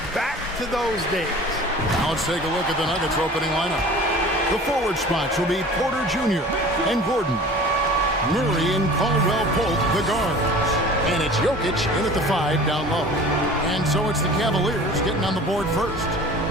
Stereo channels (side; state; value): both; normal; correlation 0.42